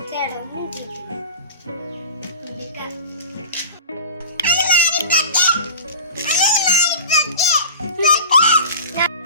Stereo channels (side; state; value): both; inverted; correlation -0.34